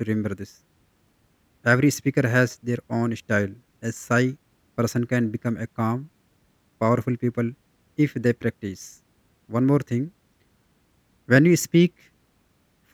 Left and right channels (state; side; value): identical; both; correlation 1.00